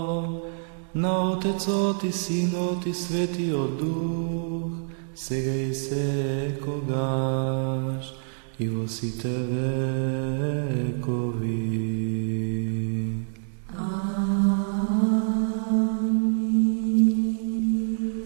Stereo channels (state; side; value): silent; left; digital silence